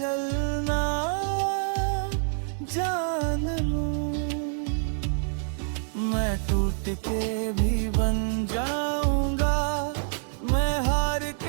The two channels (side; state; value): left; silent; digital silence